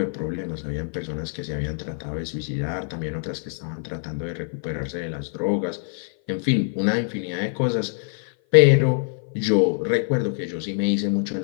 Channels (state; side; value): silent; right; 55 dB below the other